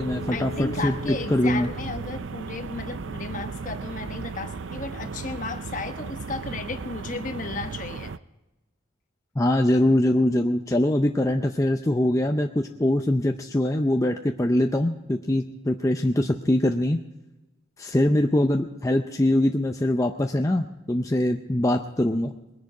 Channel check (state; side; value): normal; both; correlation 0.85